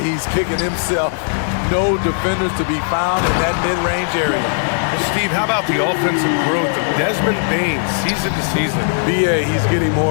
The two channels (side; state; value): right; silent; digital silence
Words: kicking himself. No defenders to be found in that mid-range area. Steve, how about the offensive growth of Desmond Bane season to season? BA, he's getting